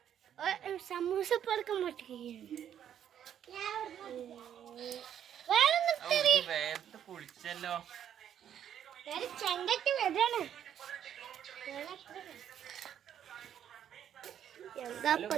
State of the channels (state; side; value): quieter; left; 9.7 dB